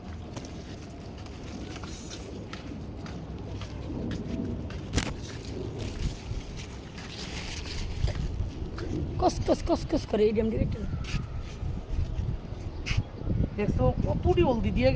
কস কস কস কস করে এই ড্যাম ডিরেক্টর দেখছো কতটি হলদি দিয়ে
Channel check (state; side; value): identical; both; correlation 1.00